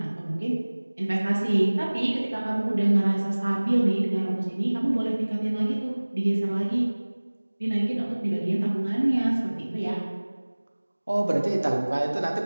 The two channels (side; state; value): both; inverted; correlation -1.00